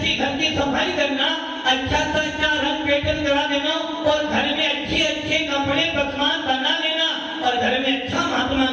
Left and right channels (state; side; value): identical; both; correlation 1.00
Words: घर की सफाई करना, अच्छा से अच्छा रंग पेटन करा देना और घर में अच्छे अच्छे कपड़े पकवान बना लेना और घर में अच्छा महात्मा